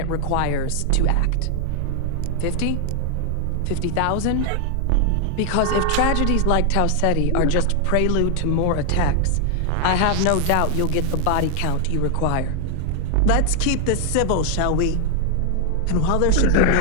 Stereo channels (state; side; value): different; both; correlation 0.00